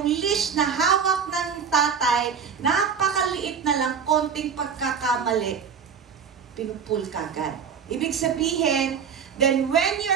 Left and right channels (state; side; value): quieter; left; 6.7 dB